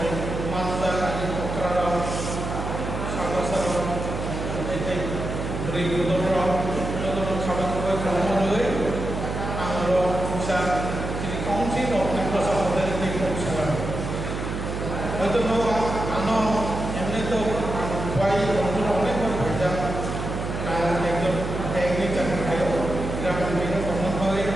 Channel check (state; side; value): noise; right; hum, 4 dB below the sound